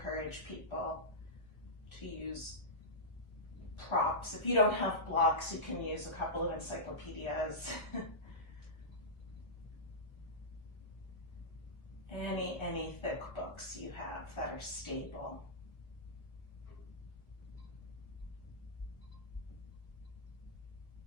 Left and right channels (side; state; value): right; late; 1.0 ms